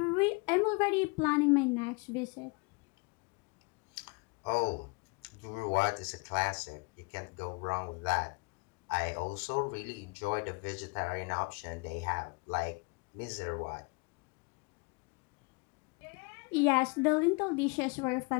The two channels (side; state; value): right; quieter; 29.8 dB